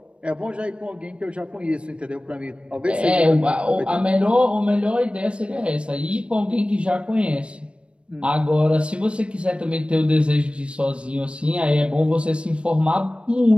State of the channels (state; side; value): late; left; 0.058 ms